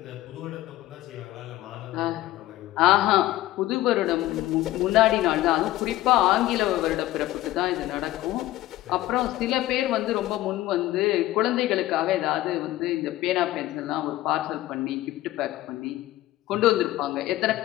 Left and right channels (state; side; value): quieter; right; 15.7 dB